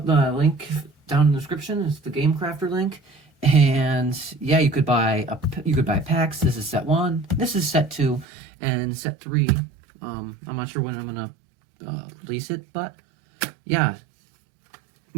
the link down in the description. It's the Game Crafter link. And yeah, you could buy packs. This is set 1, this is set 2, and set 3. I'm not sure when I'm gonna release it, but yeah,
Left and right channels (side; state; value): left; drops out; at 8.2 s